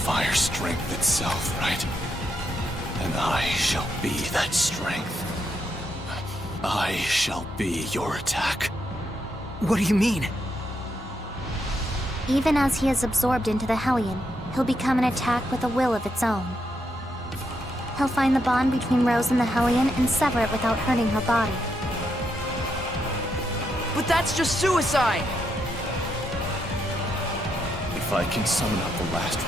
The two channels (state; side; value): normal; both; correlation 0.80